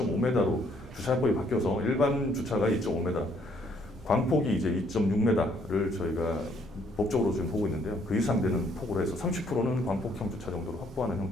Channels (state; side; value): normal; both; correlation 0.67